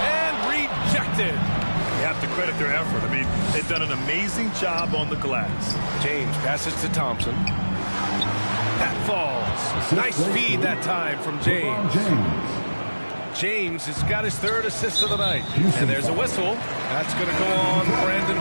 and rejected. You have to credit their effort. I mean, they've done an amazing job on the glass. James passes to Thompson. That falls. Nice feed that time from James. James has got his 3rd assist of the night. And there's a whistle. That's going to go on Brandon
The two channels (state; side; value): inverted; both; correlation -1.00